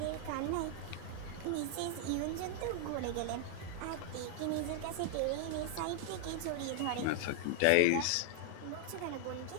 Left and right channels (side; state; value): both; different; correlation 0.00